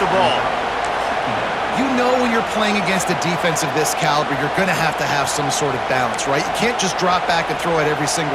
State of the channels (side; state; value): both; identical; correlation 1.00